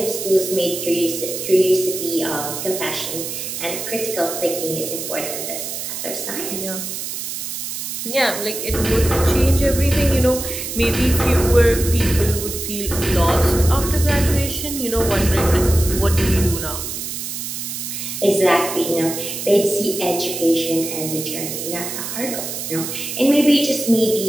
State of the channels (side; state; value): right; noise; hiss, 6 dB below the sound